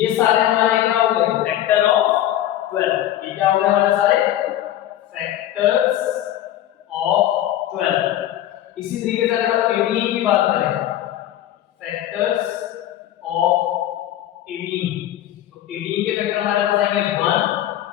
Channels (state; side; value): quieter; right; 12.6 dB